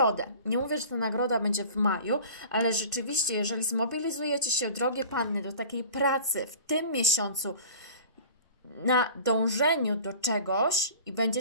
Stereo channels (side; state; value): both; inverted; correlation -0.41